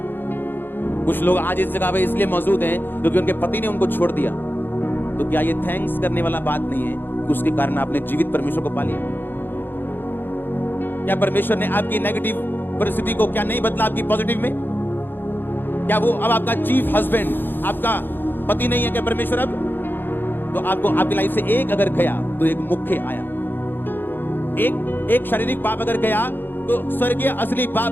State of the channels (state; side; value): late; right; 0.096 ms